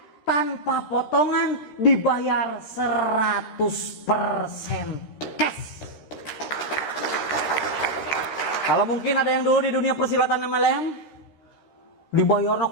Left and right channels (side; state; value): right; late; 13 ms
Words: tanpa potongan, dibayar 100% cash. Kalau mungkin ada yang dulu di dunia persilatan MLM, dibayarnya